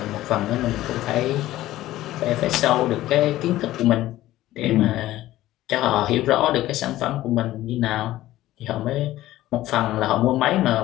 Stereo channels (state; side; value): quieter; right; 15.2 dB